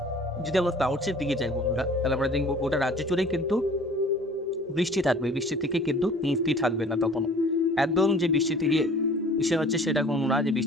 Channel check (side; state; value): both; normal; correlation 0.49